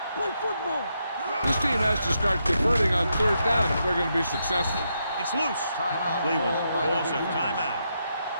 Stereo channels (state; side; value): inverted; both; correlation -0.81